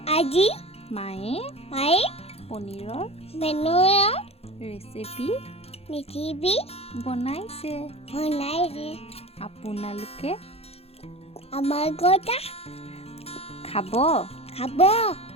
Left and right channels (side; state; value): right; late; 0.29 ms